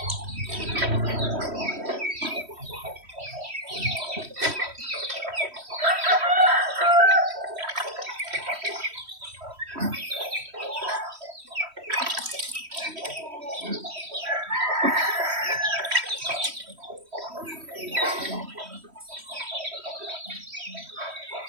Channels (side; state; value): left; late; 3.1 ms